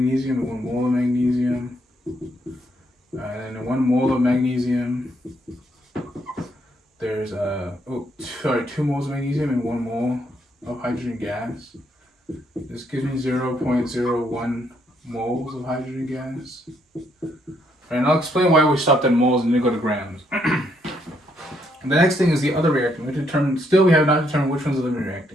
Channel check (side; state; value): both; normal; correlation 0.73